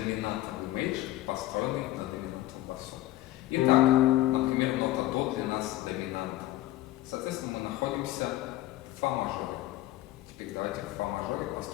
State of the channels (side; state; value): right; quieter; 15.5 dB